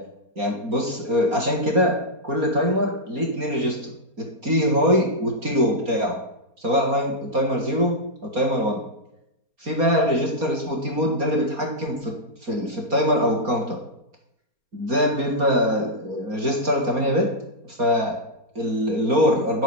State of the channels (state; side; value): late; left; 4.3 ms